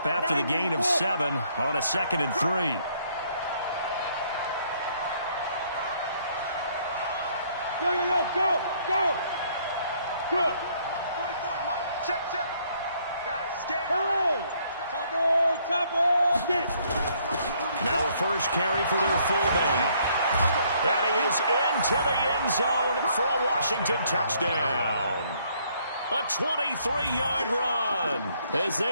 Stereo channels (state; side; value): inverted; both; correlation -0.67